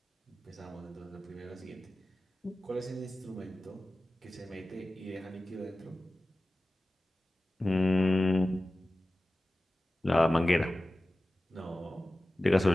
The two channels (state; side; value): normal; both; correlation 0.96